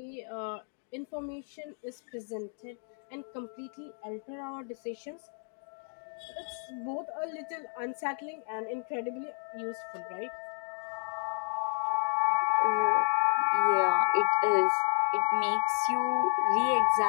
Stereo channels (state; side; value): silent; right; 57 dB below the other